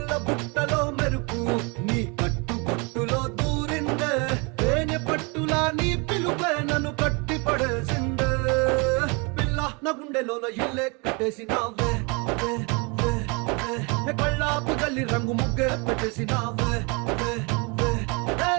బుట్టలో మెరుపు నీ కట్టు బొట్టులో దూరిందే తేనె పట్టులా నీ పిలుపే నన్ను కట్టి పడేసిందే పిల్ల నా గుండెలోన ఇల్లే కట్టేసినావే కళ్ళాపు గల్లి రంగు ముగ్గే పెట్టేసినావే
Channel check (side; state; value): left; quieter; 30.8 dB